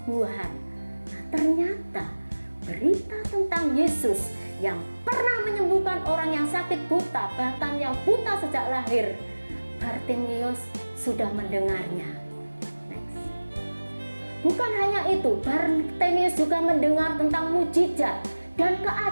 Nah, ternyata berita tentang Yesus yang pernah menyembuhkan orang yang sakit buta, bahkan yang buta sejak lahir, Bartimeus sudah mendengarnya. Bukan hanya itu, Bartimeus juga mendengar tentang mujizat dan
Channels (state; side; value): inverted; both; correlation -1.00